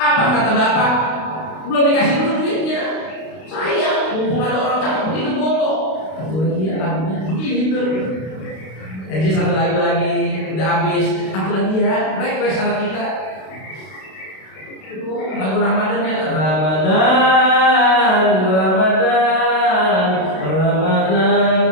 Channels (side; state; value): right; late; 32 ms